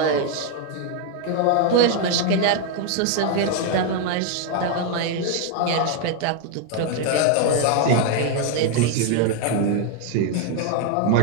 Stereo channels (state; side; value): different; both; correlation 0.00